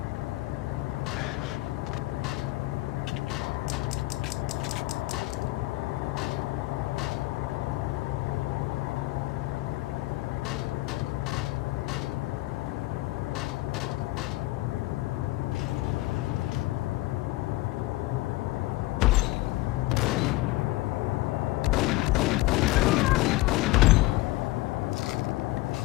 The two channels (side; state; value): right; quieter; 19.2 dB